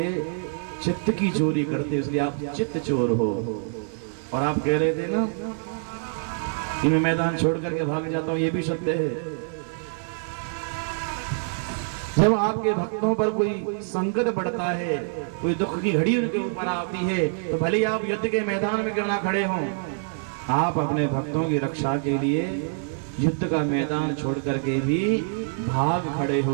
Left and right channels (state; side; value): silent; left; 61 dB below the other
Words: चित्त की चोरी करते, इसलिए आप चित्त चोर हो। और आप कह रहे थे ना कि मैं मैदान छोड़ करके भाग जाता हूं, ये भी सत्य है। जब आपके भक्तों पर कोई संकट पड़ता है, कोई दुख की घड़ी उनके ऊपर आती है, तो भले ही आप युद्ध के मैदान में क्यों ना खड़े हों, आप अपने भक्तों की रक्षा के लिए युद्ध का मैदान छोड़ करके भी भाग खड़े